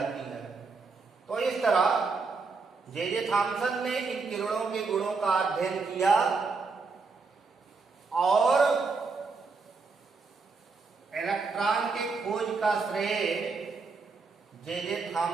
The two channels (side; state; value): left; quieter; 4.4 dB